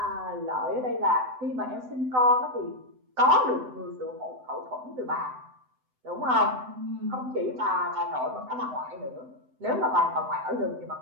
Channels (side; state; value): left; late; 7.9 ms